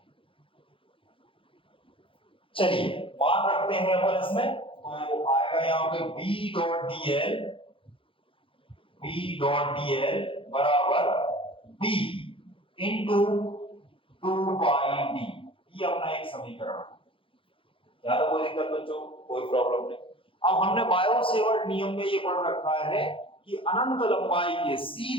चलिए मान रखते हैं अपन इसमें, तो आएगा यहाँ पे B dot DL, B dot DL बराबर बी इंटू 2 पाई डी, ये अपना एक समीकरण है, यहाँ तो कोई दिक्कत बच्चों, कोई प्रॉब्लम नहीं। अब हमने बायो सेवर्ट नियम में ये पढ़ रखा है कि अनंत लंबाई के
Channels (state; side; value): late; right; 0.25 ms